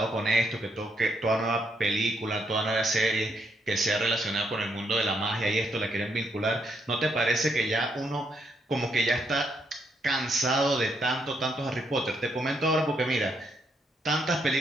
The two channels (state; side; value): normal; both; correlation 0.76